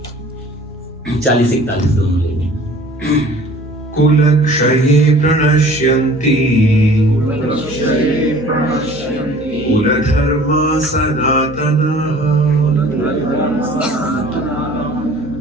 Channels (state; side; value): normal; both; correlation 0.48